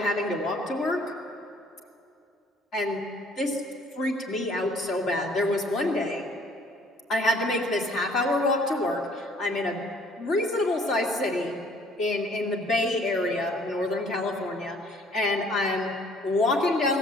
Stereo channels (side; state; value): both; normal; correlation 0.58